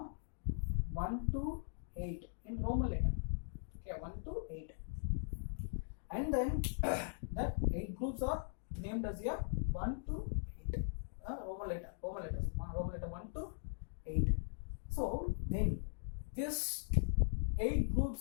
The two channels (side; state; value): right; silent; digital silence